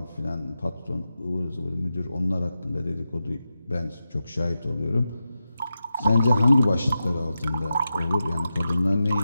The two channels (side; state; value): both; inverted; correlation -0.90